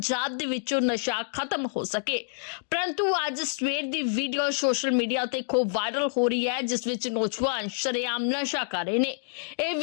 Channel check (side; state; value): right; silent; digital silence